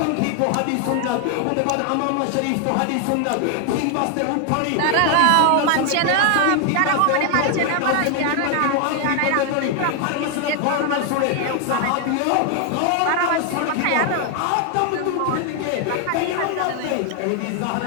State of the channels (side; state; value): both; different; correlation 0.00